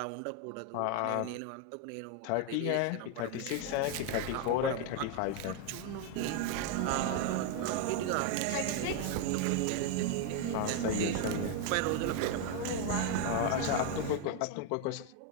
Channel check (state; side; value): different; both; correlation 0.01